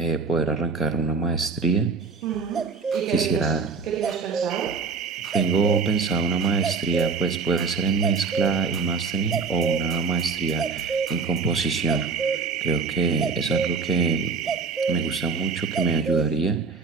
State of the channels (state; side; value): quieter; left; 4.8 dB